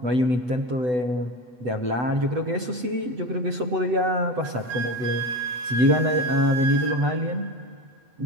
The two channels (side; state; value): left; late; 8.0 ms